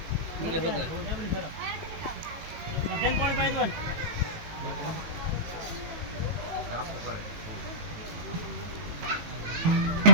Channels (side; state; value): left; late; 19 ms